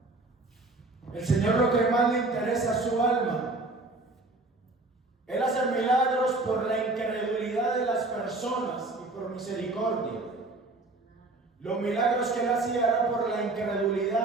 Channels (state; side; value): quieter; left; 3.0 dB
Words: El Señor lo que más le interesa es su alma. Él hace milagros por la incredulidad de las personas y por misericordia. Los milagros que Él hacía eran por la